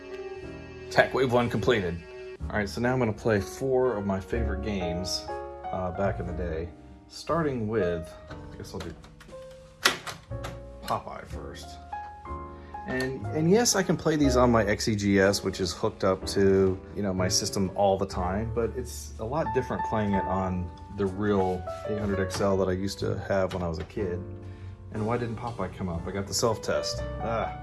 Tech Wave 1 completed. Alright, so now I'm going to play 4 of my favorite games back in the day. Starting with, I guess I'll do Popeye first. And yes, I can play these on my XEGS, which is hooked up to, my system all the time, but it's a lot different playing it on the real 800XL that I used to have when I was a kid. And why didn't Popeye come up? I got the self-test.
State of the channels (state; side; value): identical; both; correlation 1.00